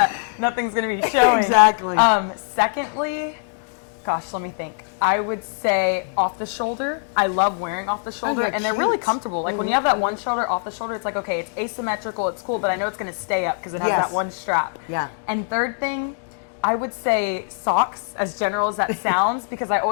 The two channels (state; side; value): silent; right; digital silence